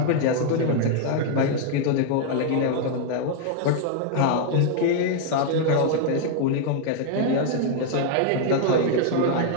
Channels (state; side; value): different; both; correlation -0.01